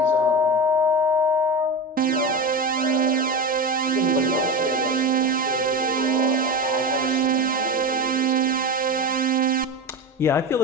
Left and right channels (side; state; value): both; normal; correlation 0.23